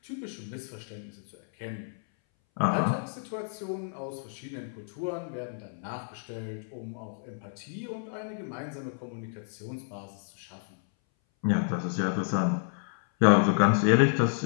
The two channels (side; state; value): right; silent; 58 dB below the other